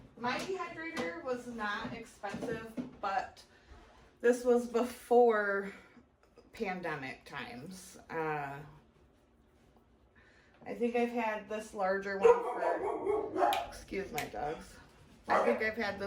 My dehydrator was not expensive, but this was before pandemic times. I think I've had this larger one for, excuse my dogs. I think I've had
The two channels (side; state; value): both; identical; correlation 1.00